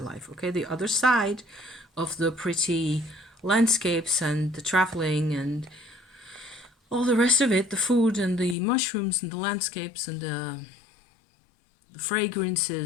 Okay, the other side of the pretty landscapes and the traveling and all the rest of it, the food and the mushrooms and the landscapes and the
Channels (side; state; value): right; drops out; at 8.6 s